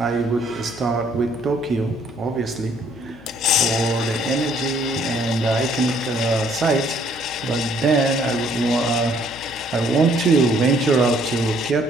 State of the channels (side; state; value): left; noise; hum, 22 dB below the sound